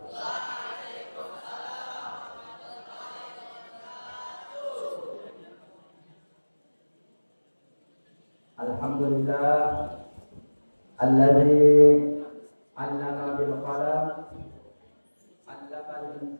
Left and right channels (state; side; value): inverted; both; correlation -1.00